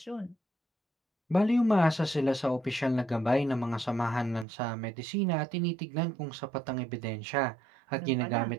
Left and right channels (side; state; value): left; drops out; at 4.5 s